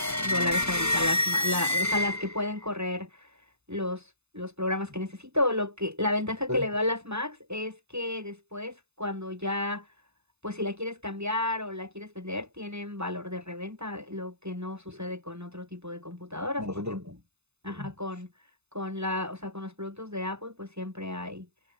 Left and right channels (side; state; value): left; late; 0.81 ms